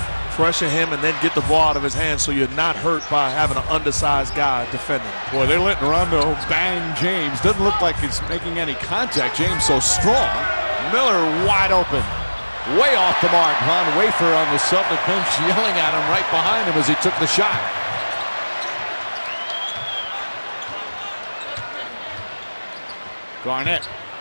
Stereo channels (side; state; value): both; inverted; correlation -1.00